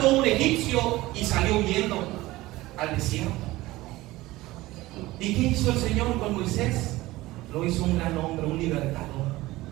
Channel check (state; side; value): quieter; left; 18.4 dB